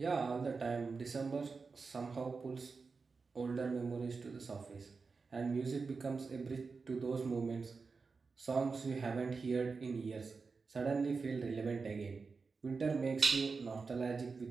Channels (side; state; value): left; quieter; 4.6 dB